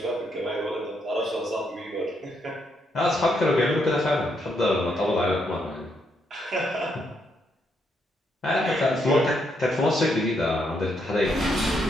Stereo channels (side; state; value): both; normal; correlation 0.76